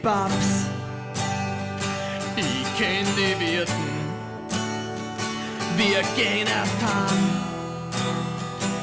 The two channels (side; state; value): both; identical; correlation 1.00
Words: ich kenn die Wirten. Wir gehen erst heim,